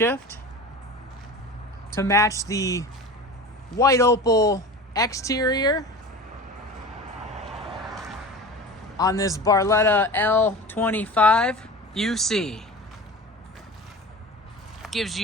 to match the white opal exterior on this Barletta L25UC. Gives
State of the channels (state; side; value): normal; both; correlation 0.34